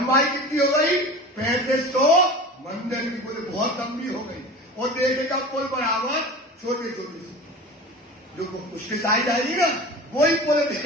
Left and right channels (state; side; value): normal; both; correlation 0.35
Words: कितनी हो गई 3500 मंदिर की। बोले बहुत लंबी हो गई, और देखेगा पुल बराबर छोटे छोटे से, जो उसके साइड आएगी ना वही पुल